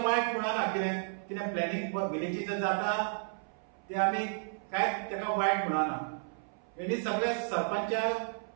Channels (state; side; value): silent; left; 56 dB below the other